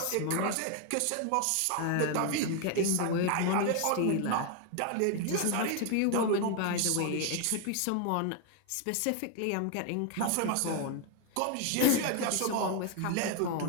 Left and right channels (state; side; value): different; both; correlation 0.00